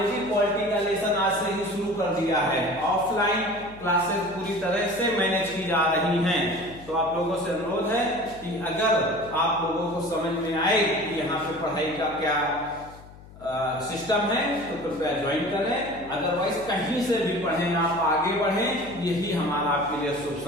पॉलिटी का लेसन आज से ही शुरू कर दिया है। ऑफलाइन क्लासेस पूरी तरह से मैनेज की जा रही हैं। तो आप लोगों से अनुरोध है कि अगर आप लोगों को समझ में आए कि यहाँ पे पढ़ाई का क्या सिस्टम है तो कृपया ज्वाइन करें। अदरवाइज कहीं से भी पढ़ें, आप आगे बढ़ें, यही हमारा आपके लिए शुभ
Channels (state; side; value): noise; left; hum, 20 dB below the sound